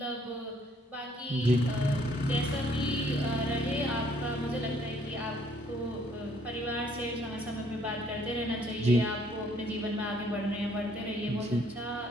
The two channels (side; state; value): both; normal; correlation 0.64